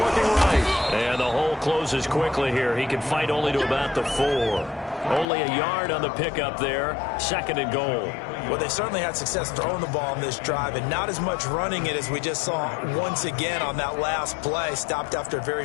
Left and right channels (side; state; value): right; drops out; at 5.2 s